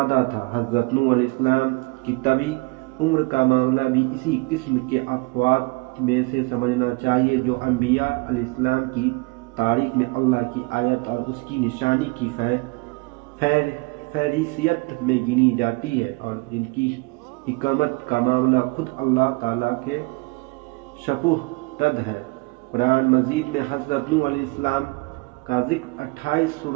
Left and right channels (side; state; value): left; quieter; 27.0 dB